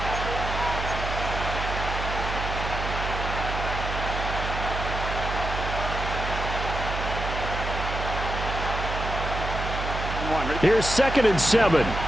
Here's 2nd and 7. Here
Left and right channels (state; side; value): noise; right; hum, 4 dB below the sound